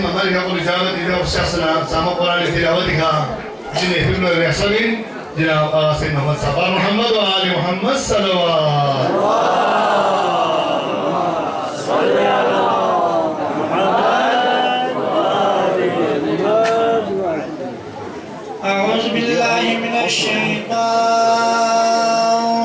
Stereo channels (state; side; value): identical; both; correlation 1.00